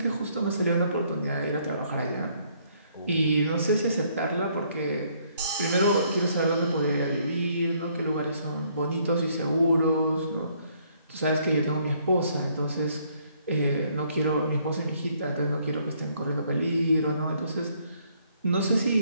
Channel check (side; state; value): both; inverted; correlation -0.67